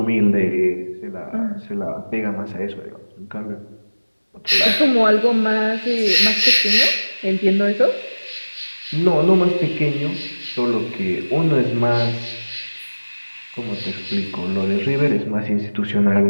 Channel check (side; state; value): both; inverted; correlation -1.00